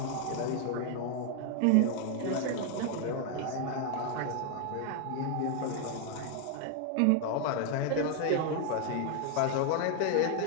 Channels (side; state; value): both; different; correlation 0.00